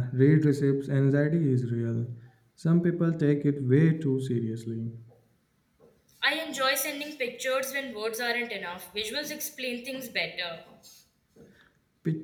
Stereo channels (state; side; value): identical; both; correlation 1.00